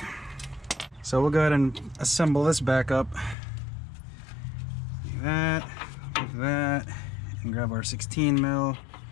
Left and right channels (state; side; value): drops out; right; at 3.4 s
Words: So we'll go ahead and assemble this back up. Like that, and grab our 16 mil.